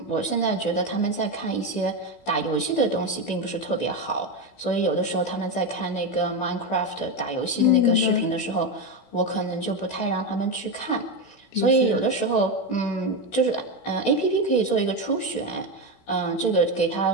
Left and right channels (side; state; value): right; late; 16 ms